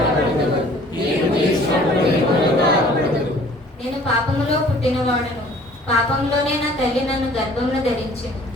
నేను పాపములో పుట్టినవాడను, పాపంలోనే నా తల్లి నన్ను గర్భమును ధరించింది.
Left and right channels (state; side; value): normal; both; correlation 0.53